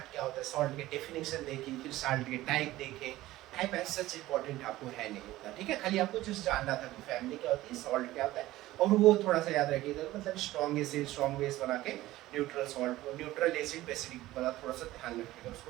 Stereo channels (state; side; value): quieter; left; 16.5 dB